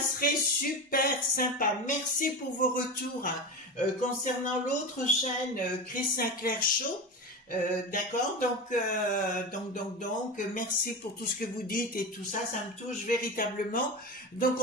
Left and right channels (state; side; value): normal; both; correlation 0.24